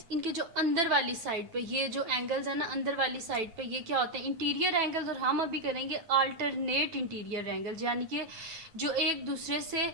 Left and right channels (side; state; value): left; late; 9.1 ms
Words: इनके जो अंदर वाली साइड पे ये जो एंगल्स है ना अंदर वाली साइड पे ये क्या होते हैं, इंटीरियर एंगल्स। और हम अभी करेंगे अल्टरनेट इंटीरियर एंगल्स, यानी कि जो एक दूसरे से